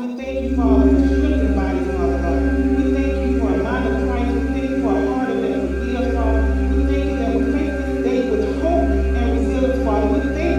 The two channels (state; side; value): identical; both; correlation 1.00